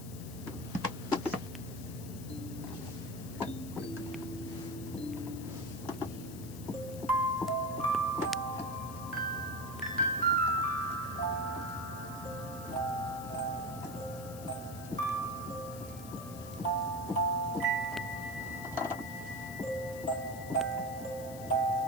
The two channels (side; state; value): left; noise; hiss, 15 dB below the sound